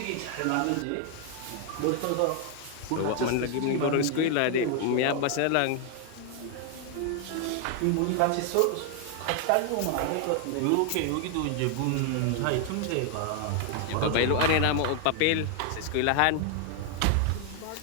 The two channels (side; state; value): both; different; correlation 0.00